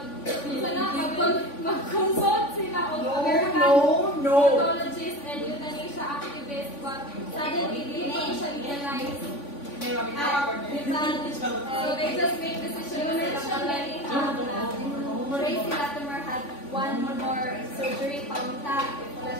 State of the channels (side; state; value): right; late; 3.5 ms